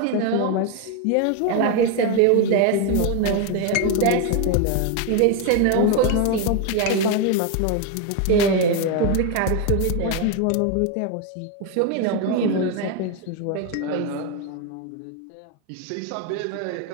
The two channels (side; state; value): both; different; correlation 0.01